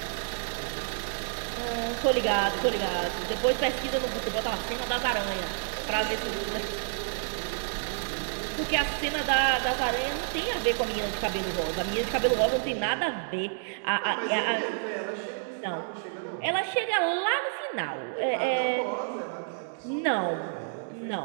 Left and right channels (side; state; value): left; silent; digital silence